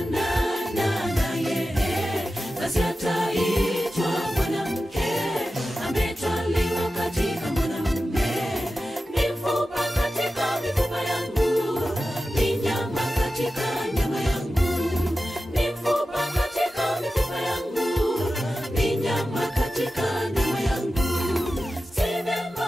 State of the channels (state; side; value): normal; both; correlation 0.93